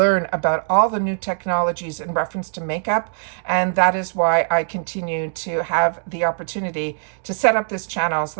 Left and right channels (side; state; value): left; silent; digital silence